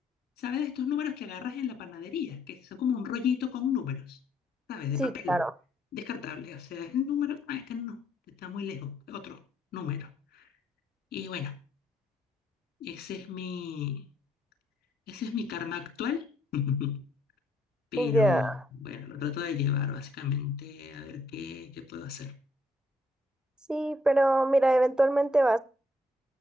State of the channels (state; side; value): normal; both; correlation 0.71